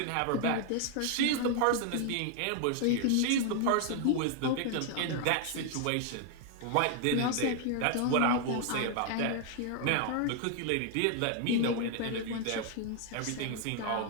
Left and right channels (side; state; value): both; different; correlation 0.00